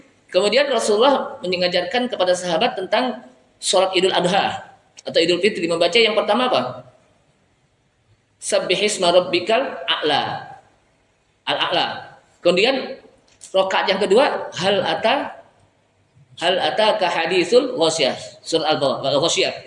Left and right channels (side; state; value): both; identical; correlation 1.00